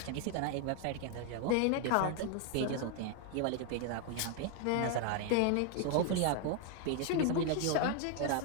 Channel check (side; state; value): both; different; correlation 0.00